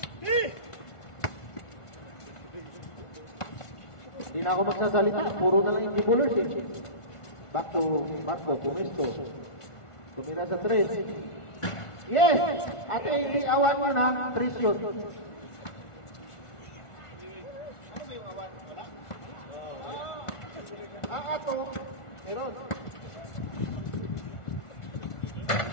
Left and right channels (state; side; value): late; right; 1.5 ms